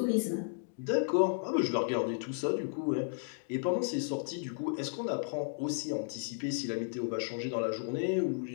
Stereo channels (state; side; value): silent; right; digital silence